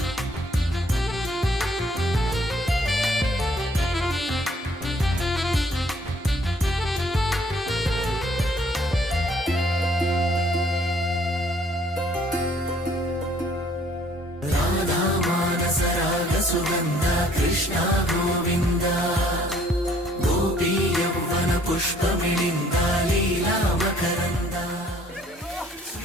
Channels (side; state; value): both; normal; correlation 0.61